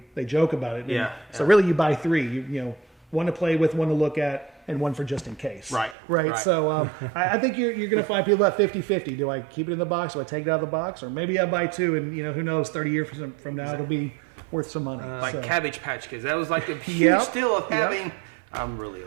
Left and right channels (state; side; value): drops out; left; at 6.0 s